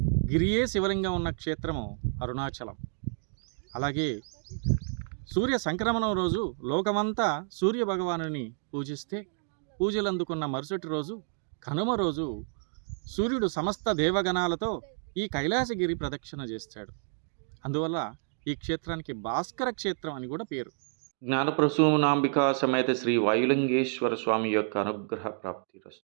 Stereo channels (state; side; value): silent; left; 58 dB below the other